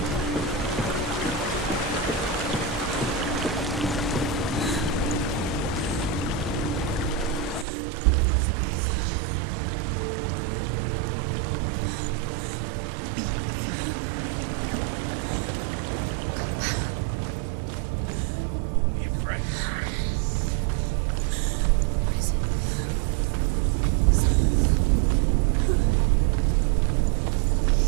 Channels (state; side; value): drops out; left; at 7.7 s